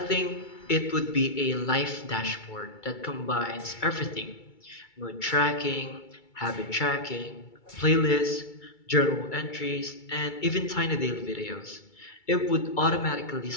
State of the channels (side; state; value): right; late; 2.3 ms